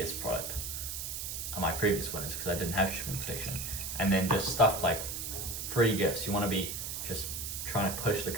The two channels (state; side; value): noise; right; hiss, 5 dB below the sound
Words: product, on my previous winners, because I didn't have shipping protection. And then just stuff like free gifts. You want to be just trying to push the